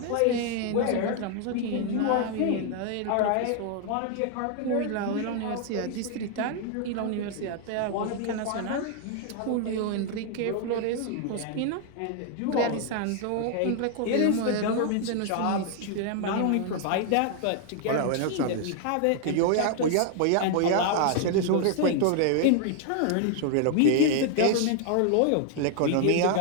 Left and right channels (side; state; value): both; different; correlation 0.00